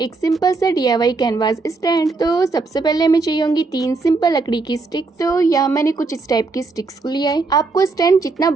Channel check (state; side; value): quieter; left; 3.9 dB